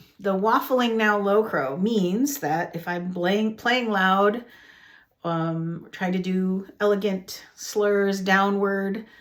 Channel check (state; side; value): identical; both; correlation 1.00